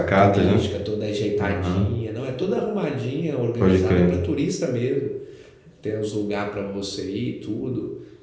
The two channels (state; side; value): identical; both; correlation 1.00